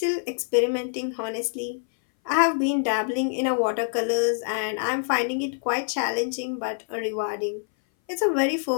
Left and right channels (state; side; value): silent; right; 59 dB below the other